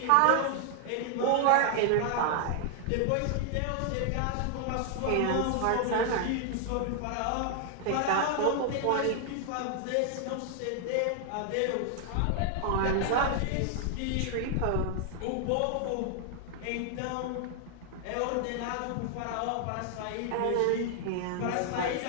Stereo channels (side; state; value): both; different; correlation 0.00